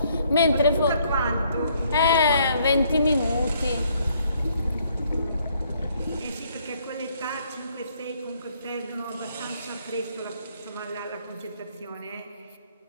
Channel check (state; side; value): inverted; both; correlation -0.68